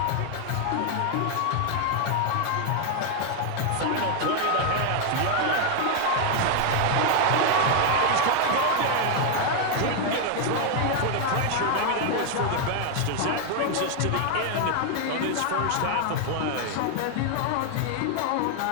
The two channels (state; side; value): different; both; correlation 0.00